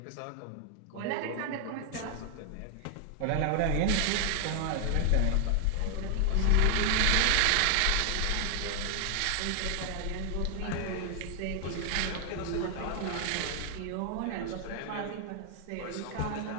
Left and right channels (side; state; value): both; different; correlation 0.00